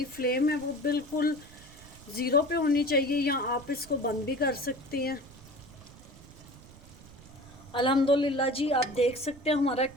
फ्लेम है वो बिल्कुल ज़ीरो पे होनी चाहिए, या आप इसको बंद भी कर सकती हैं। अल्हम्दुलिल्लाह जी, आप देख सकते हैं हमारा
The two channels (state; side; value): noise; right; rumble, 20 dB below the sound